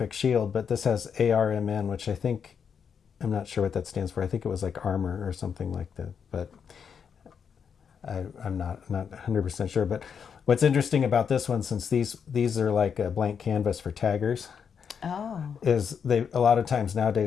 Shield, but this has ARMN, which I'm not sure what that stands for. I think it was like armor or something like that, but I'm not 100% sure. But what's interesting about this one, since these are like a blank canvas for taggers, is a lot of times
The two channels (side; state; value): right; quieter; 7.0 dB